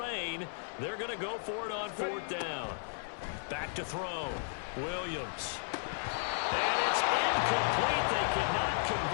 they're going to go for it on 4th down. Back to throw. Williams. And it's incomplete. They cannot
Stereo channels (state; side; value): silent; right; 55 dB below the other